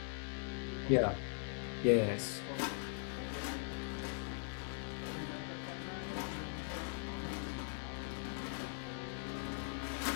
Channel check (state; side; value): silent; right; digital silence